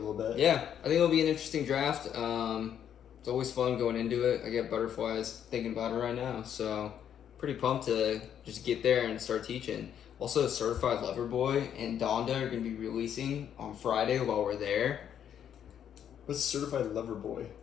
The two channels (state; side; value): quieter; right; 9.2 dB